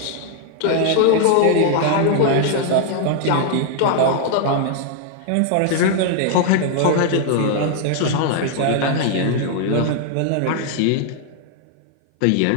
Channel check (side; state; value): both; different; correlation 0.00